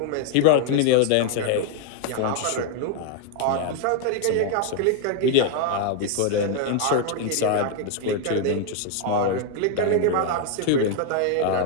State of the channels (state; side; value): different; both; correlation 0.01